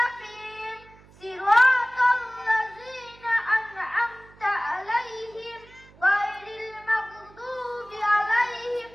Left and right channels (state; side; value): noise; right; hum, 25 dB below the sound